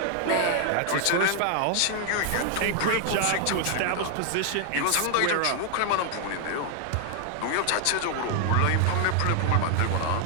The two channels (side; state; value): both; different; correlation 0.00